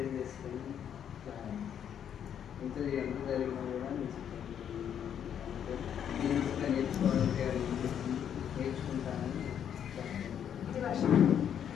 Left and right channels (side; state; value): right; quieter; 9.0 dB